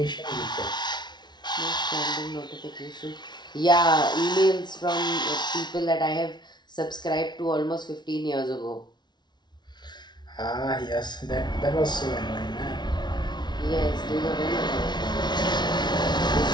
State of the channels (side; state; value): right; late; 0.21 ms